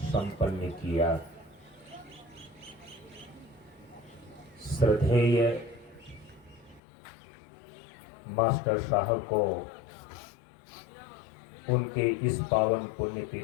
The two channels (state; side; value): drops out; right; at 6.8 s